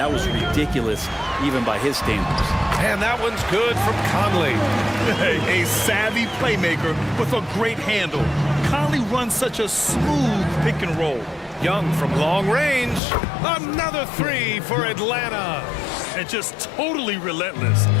was ridiculous, even by his standards. And that one's good from Conley. A savvy playmaker with a great handle. Conley runs such a smooth pick and roll. Young from long range. Another 3 for Atlanta. And just totally relentless,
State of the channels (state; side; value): drops out; right; at 13.0 s